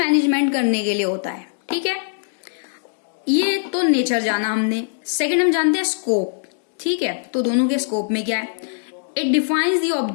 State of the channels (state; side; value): silent; right; digital silence